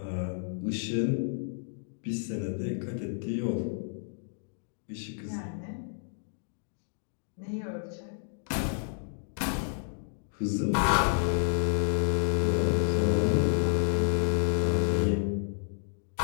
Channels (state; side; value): silent; right; digital silence